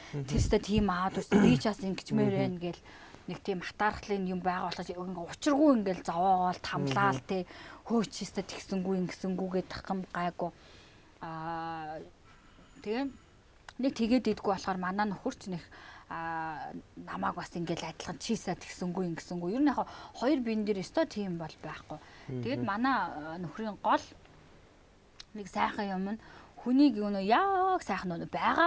Тэстэ тийм аваад үсэ би чаас ингэчмээр байна гэл нэг тийм хатаархлын юм байгаа болохоо учиргүй ингээл зовоогоол тамлаал те хөөчөөстэй тэгсэнгүү ингэсэнгүүгээ тахам гайгүй тэгээ нэг тэгээд идэггүй болохоор манай нөхөрч нэг намааг бас ингээл адилхан чийсаа тэгсэнгүү ингэсэнгүү ер нь яг хоёр биен дээр өстой тийм бол байхгүй тэгээд манай нөхрийн гол нэг сайхан юм нь хүнийг юу яг сайхан нөө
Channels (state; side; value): identical; both; correlation 1.00